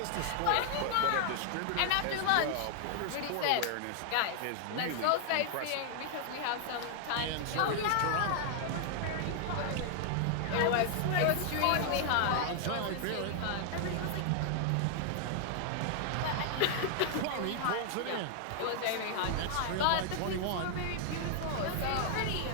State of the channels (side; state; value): both; different; correlation 0.00